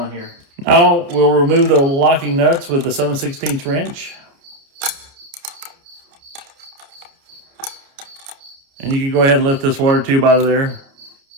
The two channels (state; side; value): late; left; 29 ms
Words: here. Now we'll remove the locking nuts with the 7/16 wrench. And you can go ahead and lift this water tube out of there.